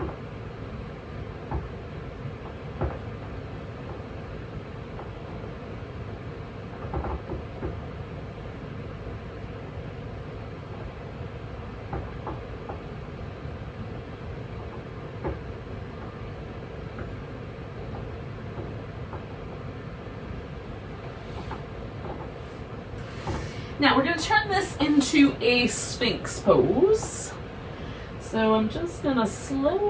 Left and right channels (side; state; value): both; identical; correlation 1.00